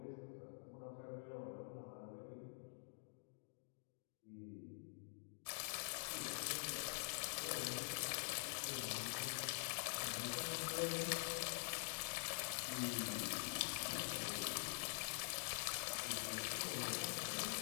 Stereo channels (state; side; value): silent; right; digital silence